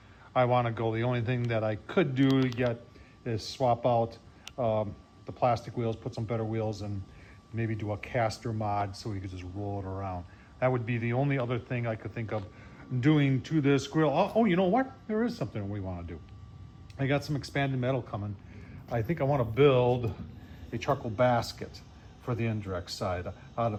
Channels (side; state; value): both; identical; correlation 1.00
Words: I want to go. The only thing that I could do yet is swap out the plastic wheels, put some better wheels, and maybe do a caster mod so we could just roll it around. That would be the only other thing I could think of doing to this grill. Oh, you know what? There is something we want to do. I got some expanded metal coming. I think I want to build a charcoal basket for the indirect side out